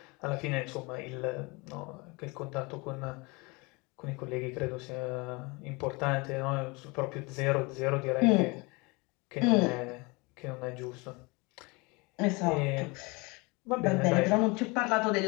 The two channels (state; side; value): quieter; right; 26.7 dB